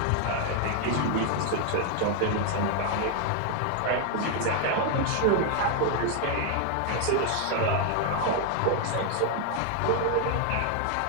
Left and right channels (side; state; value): both; different; correlation 0.00